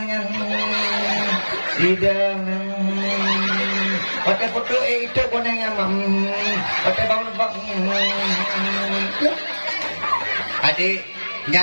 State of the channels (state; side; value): inverted; both; correlation -1.00